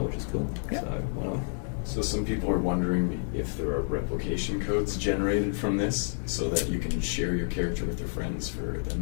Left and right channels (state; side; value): silent; right; digital silence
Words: which is cool. Yeah. So why not? So some people are wondering if there are replication codes generated from this so that you can share your character with your friends for